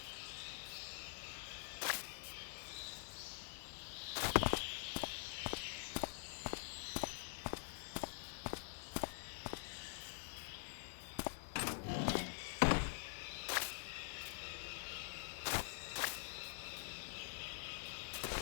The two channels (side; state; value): right; silent; digital silence